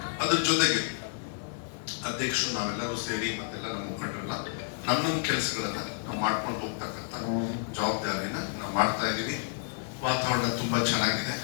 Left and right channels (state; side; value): silent; right; digital silence